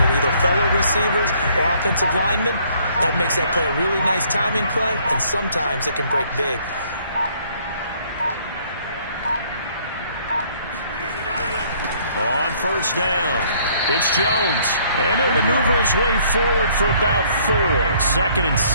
him, either fellow receivers or offensive linemen? That makes that play a really nice timing play, and sometimes it can break big. On 1st down, it's Jones. And he'll maneuver his way forward for about 4. 2nd and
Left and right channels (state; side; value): inverted; both; correlation -0.62